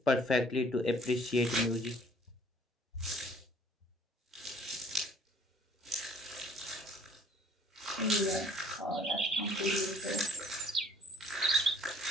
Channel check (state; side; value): normal; both; correlation 0.56